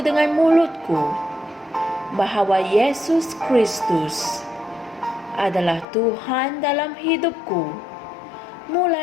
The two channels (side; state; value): right; drops out; at 5.9 s